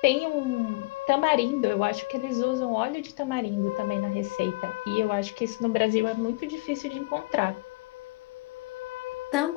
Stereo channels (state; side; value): quieter; right; 24.3 dB